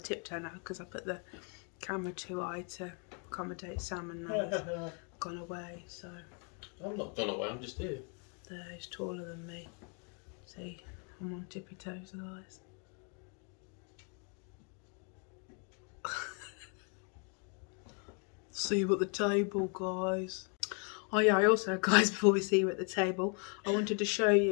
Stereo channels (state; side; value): quieter; right; 38.4 dB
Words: to tiptoe now because I put the camera too high to accommodate Sam, and now he's gone away, so. I'm not gone away, I'm just here. There, he's taller than me. See, I'm on tippy toes otherwise. See you at the table, guys. Oh yeah, I also, guys, before we see you at the table, I wanted to show